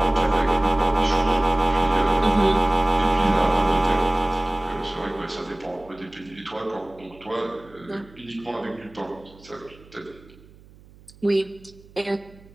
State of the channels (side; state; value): right; noise; hum, 25 dB below the sound